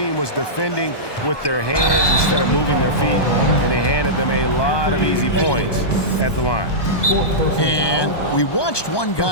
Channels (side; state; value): right; late; 1.2 ms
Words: was defending with their hands instead of moving their feet, and they handed them a lot of easy points at the line. And we watched one